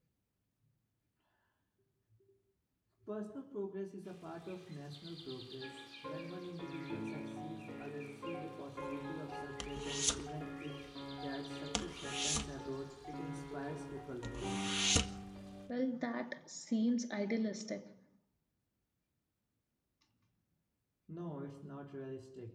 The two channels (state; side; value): identical; both; correlation 1.00